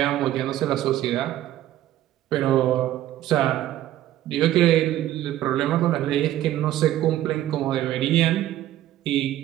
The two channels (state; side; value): quieter; left; 13.4 dB